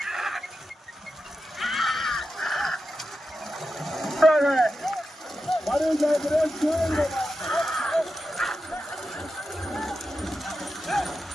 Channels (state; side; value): normal; both; correlation 0.90